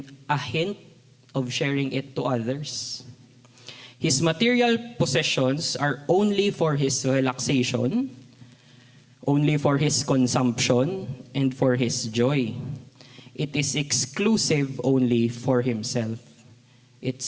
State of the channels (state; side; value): identical; both; correlation 1.00